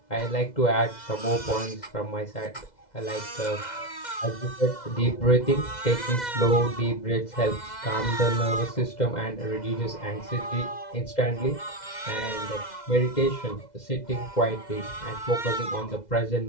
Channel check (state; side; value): late; right; 2.0 ms